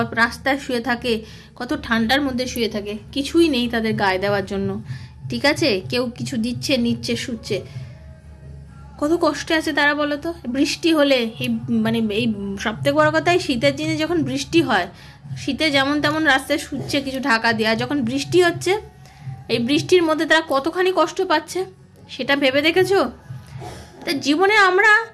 রাস্তায় শুয়ে থাকে, কত ঠান্ডার মধ্যে শুয়ে থাকে, কিছুই নেই তাদের গায়ে দেওয়ার জন্য। ঠিক আছে, কেউ কিছু দিচ্ছে, নিচ্ছে, শুচ্ছে, কত কষ্টে আছে তারা, বলো তো? বৃষ্টি হলে এই এই সবথেকে বড় কথা, এই শীতের দিনে যখন বৃষ্টি হয়, শীতে যেমন তেমন রাস্তায় শুচ্ছে কিছু ঢাকা দেওয়া, যখন বৃষ্টি হচ্ছে এই বৃষ্টির মধ্যে তারা কতখানি কষ্ট পাচ্ছে, সেটা ভেবে দেখেছো? তা জীবনে আমরা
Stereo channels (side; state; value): both; identical; correlation 1.00